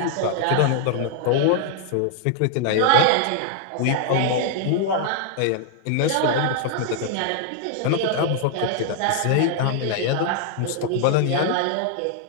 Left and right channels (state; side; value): different; both; correlation 0.00